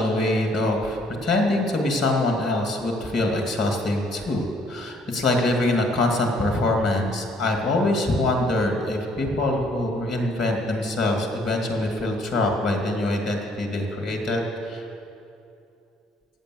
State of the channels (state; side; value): normal; both; correlation 0.63